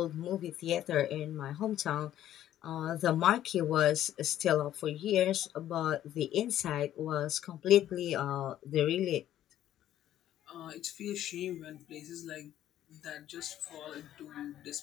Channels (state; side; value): quieter; right; 12.1 dB